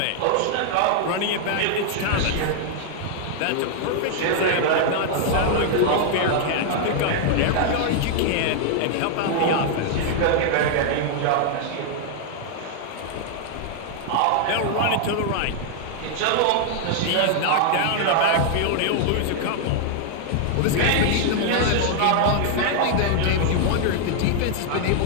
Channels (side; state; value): both; different; correlation 0.00